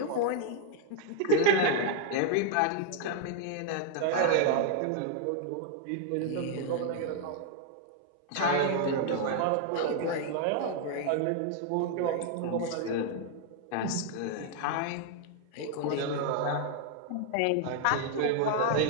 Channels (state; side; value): different; both; correlation 0.00